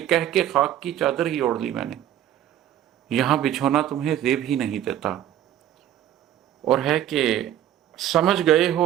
खाक की चादर ही ओढ़ ली मैंने, यहाँ बिछोना तुम्हें जेब ही नहीं देता। और है कि समझ गए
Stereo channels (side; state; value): left; quieter; 11.5 dB